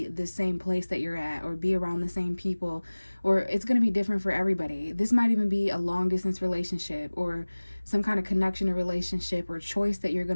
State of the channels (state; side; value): inverted; both; correlation -1.00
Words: the same place that you're at or be around the same people, or it's going to be different for everybody. This might even be a long distance relationship or some kind of connection or relationship or choice that you're